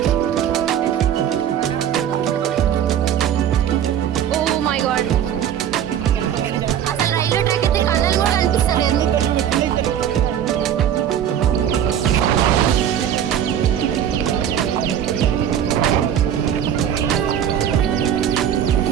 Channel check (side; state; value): left; quieter; 9.8 dB